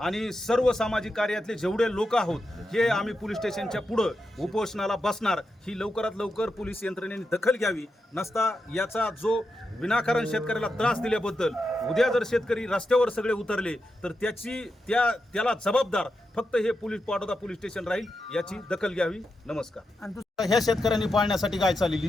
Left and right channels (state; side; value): normal; both; correlation 0.87